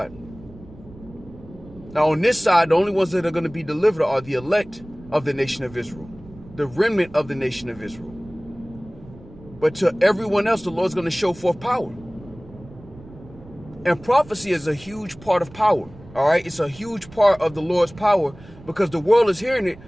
Now on this side, the only ones that are going to be delivered are the elect of the nation of Israel, the remnant of the nation of Israel. But to everyone else, the Lord's going to show forth power. And prophecy is a huge part of power. All right. It's a huge part of the Lord's power, because the world is hearing it,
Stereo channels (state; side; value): noise; right; rumble, 20 dB below the sound